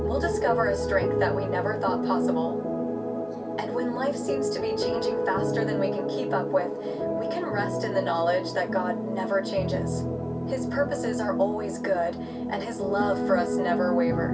We'll discover a strength that we never thought possible. And when life seems to be changing faster than we can keep up with, we can rest in the knowledge that God never changes. His purposes are always good, and His love for us never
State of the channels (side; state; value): both; identical; correlation 1.00